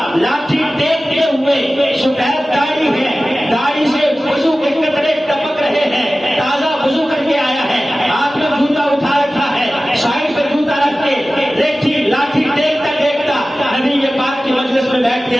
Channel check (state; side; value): normal; both; correlation 0.96